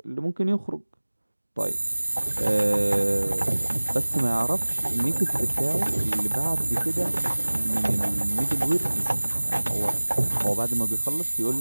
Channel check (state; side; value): inverted; both; correlation -1.00